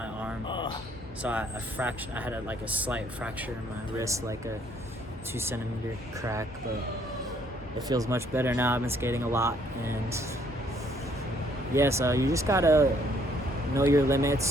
arm. So I had a slight fracture in my wrist, like a 2 centimeter crack, but it feels much better now. I've been skating a lot, and yeah, so you just gotta know your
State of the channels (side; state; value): both; normal; correlation 0.65